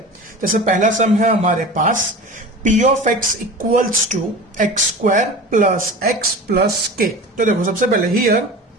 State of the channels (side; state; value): both; normal; correlation 0.34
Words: जैसे पहला सम है हमारे पास P of x equals to x square plus x plus k। तो देखो सबसे पहले here